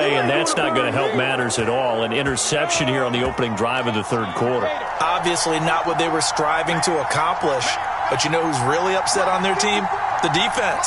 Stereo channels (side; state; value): both; identical; correlation 1.00